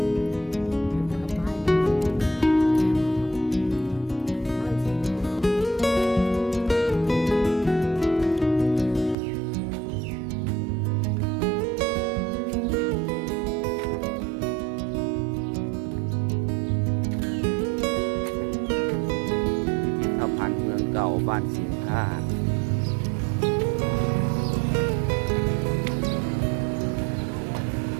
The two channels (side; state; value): left; drops out; at 9.2 s